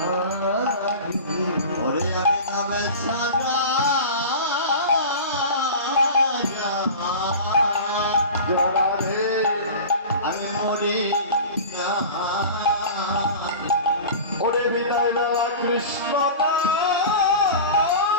ওরে আমি নামে সারা জোড়া রে আমি মরি না ওরে বিদায় বেলা কৃষ্ণ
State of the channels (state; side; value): inverted; both; correlation -0.34